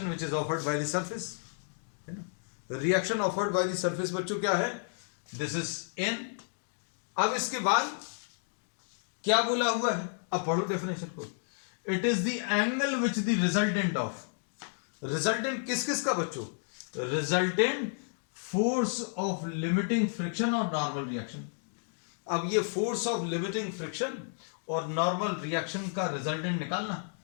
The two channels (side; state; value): right; silent; digital silence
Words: which is offered by the surface, है ना। Reaction offered by the surface बच्चों क्या है? This is an. अब इसके बाद क्या बोला हुआ है? अब पढ़ो डेफिनेशन को। It is the angle which the resultant of, resultant किस किस का बच्चों? Resultant force of limiting friction और नॉर्मल रिएक्शन। अब ये फोर्स ऑफ लिमिटिंग फ्रिक्शन और नॉर्मल रिएक्शन का रिजल्टेंट निकालना,